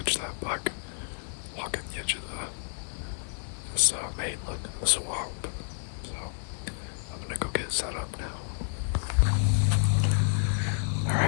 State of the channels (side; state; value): right; silent; digital silence